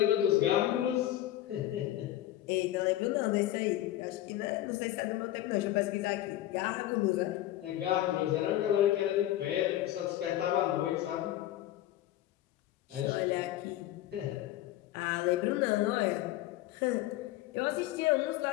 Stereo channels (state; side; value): quieter; right; 14.1 dB